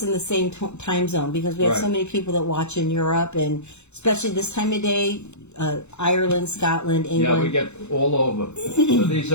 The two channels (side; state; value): right; late; 0.82 ms